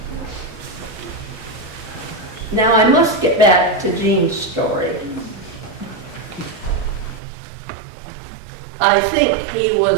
Now I must get back to Gene's story. I think he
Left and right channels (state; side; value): drops out; left; at 7.2 s